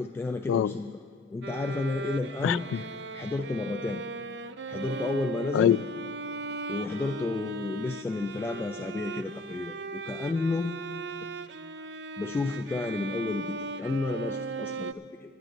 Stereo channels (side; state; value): right; quieter; 3.0 dB